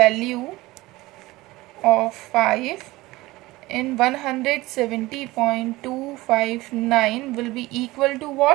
of 5 in 170.259 will be equal to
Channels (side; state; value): left; quieter; 19.6 dB